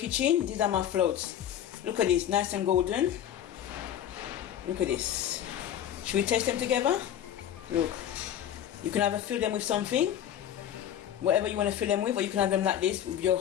these are my floats. Look at this, nice and golden. Look at this. Should we taste them together? Look. You can either fill them with something, whatever you want to fill them with, or you can have them like this with your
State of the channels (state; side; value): quieter; right; 10.5 dB